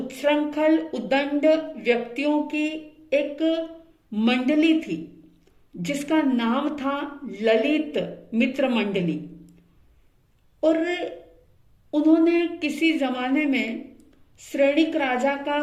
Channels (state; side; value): identical; both; correlation 1.00